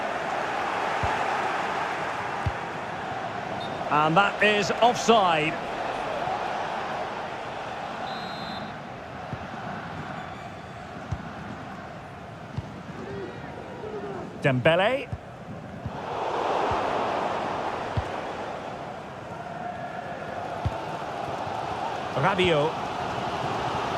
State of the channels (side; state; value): both; identical; correlation 1.00